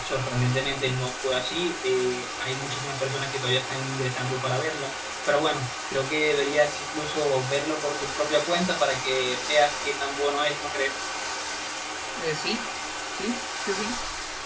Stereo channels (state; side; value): identical; both; correlation 1.00